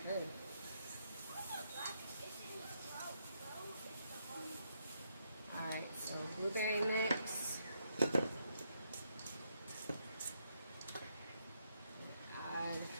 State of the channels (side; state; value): both; inverted; correlation -0.77